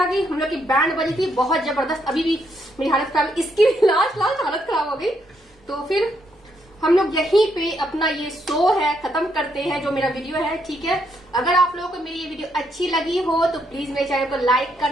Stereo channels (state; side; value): normal; both; correlation 0.76